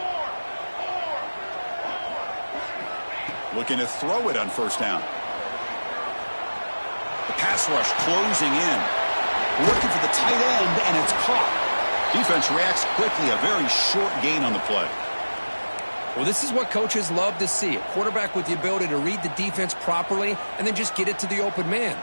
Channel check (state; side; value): inverted; both; correlation -1.00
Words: Looking to throw it on first down. The pass rush closing in. Looking for the tight end, and it's caught. Defense reacts quickly. A very short gain on the play. Well, this is what coaches love to see. A quarterback with the ability to read the defense properly and then just get it to the open man.